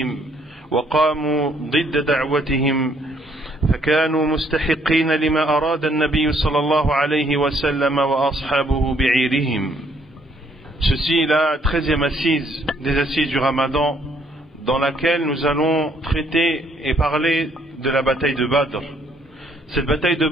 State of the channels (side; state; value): both; normal; correlation 0.67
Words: وقاموا ضد دعوتهم، فكانوا مستحقين لما أراد النبي صلى الله عليه وسلم وأصحابه بعيرهم. Ceci est la 13e assise des assises du Ramadan, dans laquelle nous allons traiter et parler de la bataille de Badr. Cette bataille de